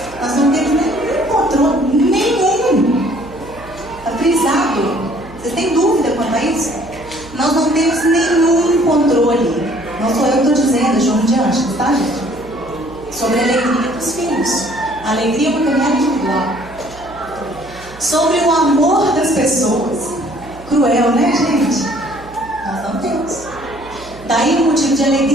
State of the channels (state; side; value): noise; right; hum, 20 dB below the sound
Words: Nós não temos nenhum controle, nenhum. Está frisado. Vocês têm dúvida quanto a isso? Nós não temos nenhum controle. Não sou eu que estou dizendo, é João de Anjos, tá, gente? Sobre a alegria dos filhos. A alegria é uma caminhada individual. Sobre o amor das pessoas. Cruel, né, gente? Nós não temos. Daí o motivo de